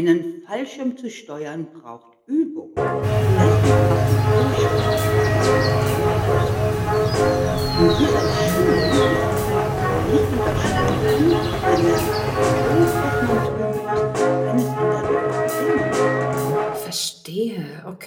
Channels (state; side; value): identical; both; correlation 1.00